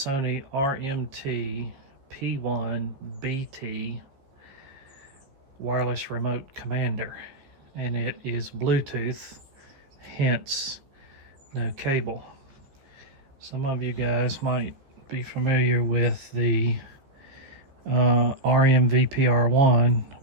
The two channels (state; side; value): late; left; 14 ms